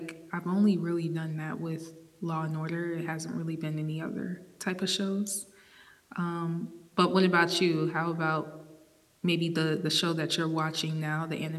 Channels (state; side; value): identical; both; correlation 1.00